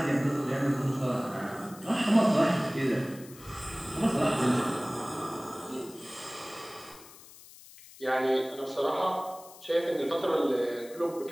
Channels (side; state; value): left; noise; hiss, 20 dB below the sound